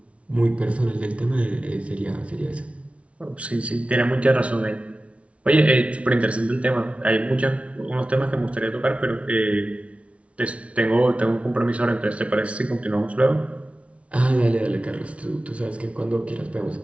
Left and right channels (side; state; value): left; late; 0.063 ms